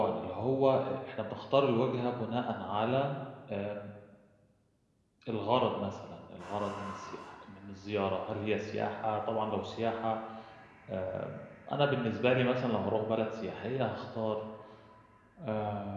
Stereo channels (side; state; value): both; identical; correlation 1.00